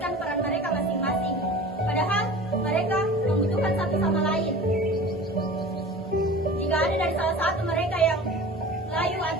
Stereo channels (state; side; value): normal; both; correlation 0.39